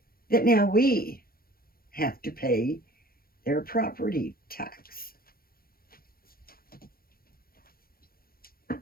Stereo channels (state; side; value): late; right; 0.43 ms